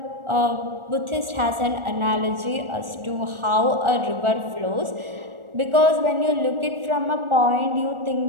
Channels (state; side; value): late; left; 1.4 ms